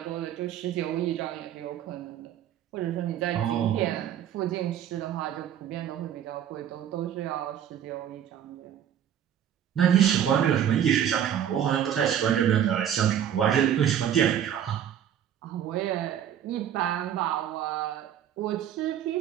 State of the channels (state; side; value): quieter; left; 9.9 dB